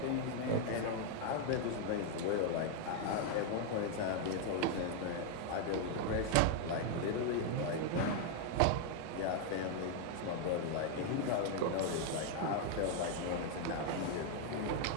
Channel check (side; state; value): both; different; correlation 0.00